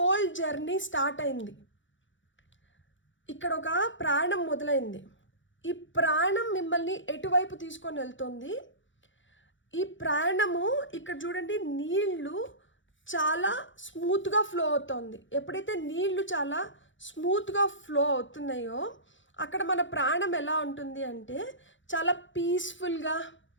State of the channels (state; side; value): late; right; 0.55 ms